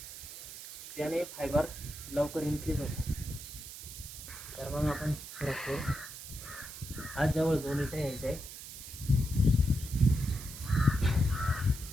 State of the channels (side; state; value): right; noise; hiss, 12 dB below the sound